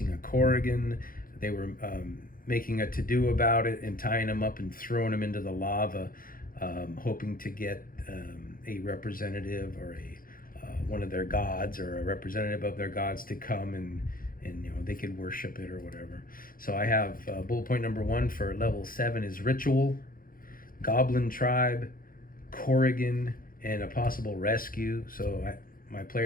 a Corrigan. They were making a to-do about it and tying them up and throwing them into the lava, hoping to get a representative or one of their gods, or a representative of their gods, to come and they could worship it or whatever. So I have bullet point number 1 for level 7 is ritual, goblin tribe, Corrigan, and a possible rescue. So my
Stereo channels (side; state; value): right; late; 0.41 ms